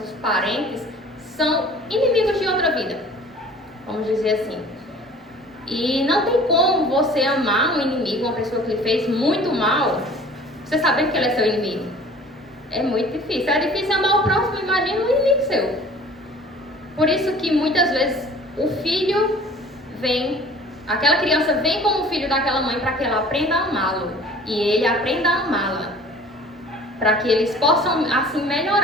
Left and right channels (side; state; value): both; normal; correlation 0.47